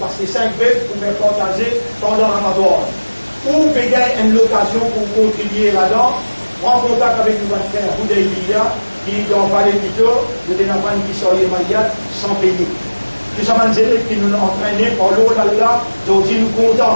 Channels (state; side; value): inverted; both; correlation -1.00